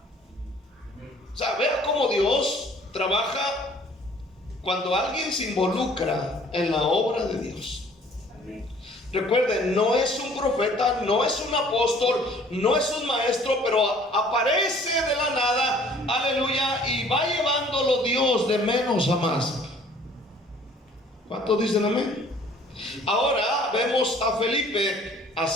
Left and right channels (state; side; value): normal; both; correlation 0.55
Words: O sea, vea cómo Dios trabaja cuando alguien se involucra en la obra de Dios. Recuerden, no es un profeta, no es un apóstol, no es un maestro, pero aparece de la nada, aleluya, y va llevándolo Dios de menos a más. ¿Cuántos dicen amén? Ahora vemos a Felipe